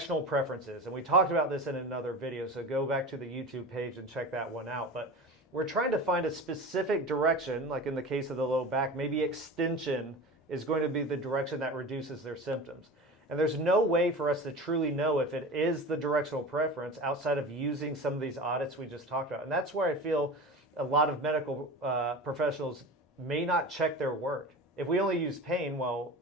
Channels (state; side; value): normal; both; correlation 0.32